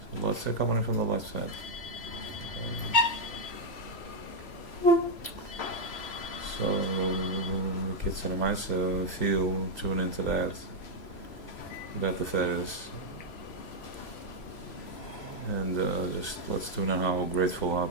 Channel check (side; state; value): right; late; 3.0 ms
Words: So let's say coming in from the left side. So, kids and mice feel, tune into that. That the Teves. And just let's tune in how grateful, how